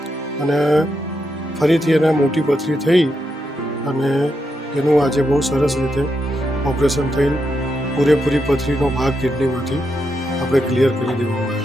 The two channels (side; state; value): both; normal; correlation 0.83